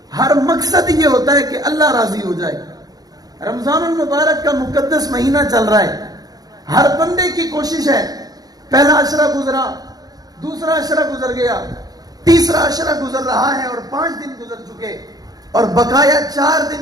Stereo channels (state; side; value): late; left; 0.19 ms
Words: ہر مقصد یہ ہوتا ہے کہ اللہ راضی ہو جائے۔ رمضان المبارک کا مقدس مہینہ چل رہا ہے، ہر بندے کی کوشش ہے، پہلا عشرہ گزرا، دوسرا عشرہ گزر گیا، تیسرا عشرہ گزر رہا ہے اور 5 دن گزر چکے اور بقایا 4